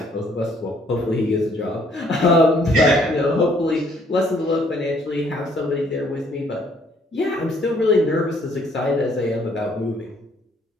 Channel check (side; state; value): both; normal; correlation 0.64